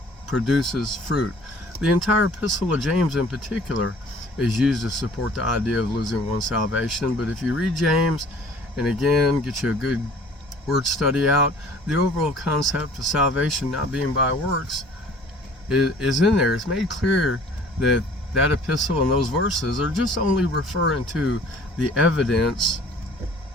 produces fruit. The entire Epistle of James in particular is used to support the idea of losing one's salvation. But if you read James, and again, get you a good word study out, the overall concept of salvation not being by works is in there. It's made clear that that epistle and those verses are just only referring to the evidence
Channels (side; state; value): both; normal; correlation 0.51